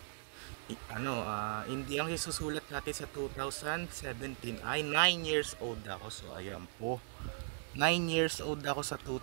Hindi ang isusulat natin sa 2017 ay 9 years old ako. So ayan po, 9 years old ako sa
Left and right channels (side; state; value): left; silent; digital silence